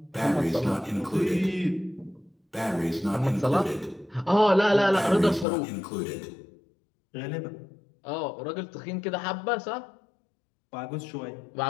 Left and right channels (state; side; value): drops out; right; at 5.5 s